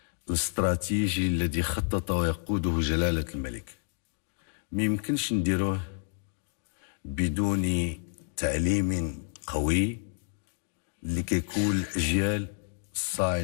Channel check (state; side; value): silent; right; 58 dB below the other